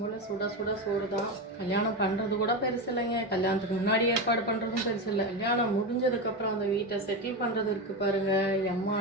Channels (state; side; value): normal; both; correlation 0.17